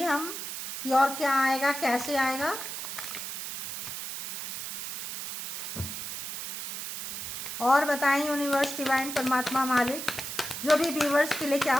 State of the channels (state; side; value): noise; right; hiss, 6 dB below the sound